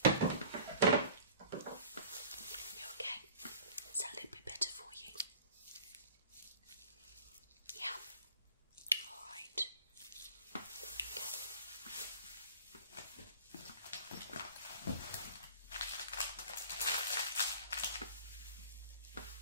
You okay? Is that a little bit better for you? Yeah. Alright. Okay.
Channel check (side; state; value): both; inverted; correlation -0.44